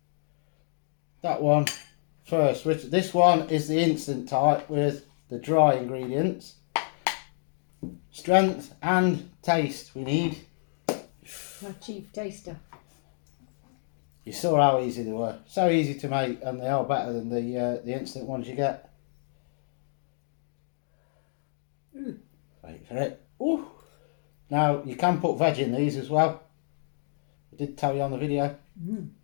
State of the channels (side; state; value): right; silent; digital silence